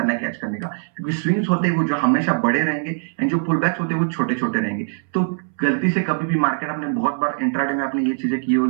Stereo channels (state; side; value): silent; left; 62 dB below the other